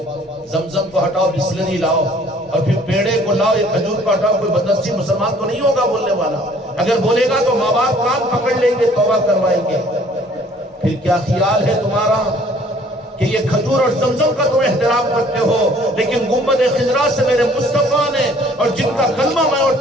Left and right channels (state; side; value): normal; both; correlation 0.57